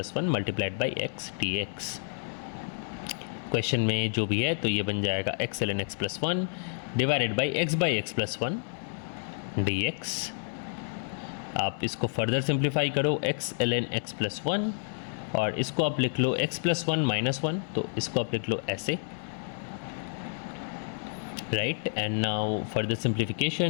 1 multiplied by x dx। Question में जो भी है तो ये बन जाएगा x ln x plus 1 divided by x plus 1 dx। आप इसको फर्दर सिंप्लीफाई करो, x ln x प्लस 1, और इसको आप लिख लो x प्लस 1 माइनस 1, तो इसको आप लिख लो ऐसे, right, and now further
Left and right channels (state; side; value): silent; right; 58 dB below the other